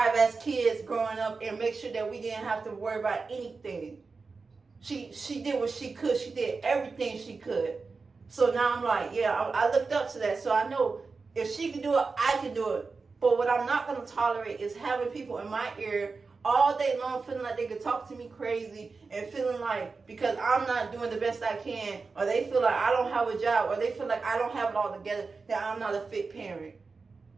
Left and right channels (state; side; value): quieter; left; 4.4 dB